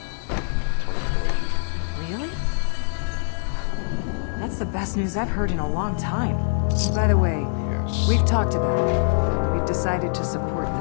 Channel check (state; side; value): silent; right; 63 dB below the other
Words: Really? That's the best news I've heard in a long time. And by the way, we've talked about it. We've decided to support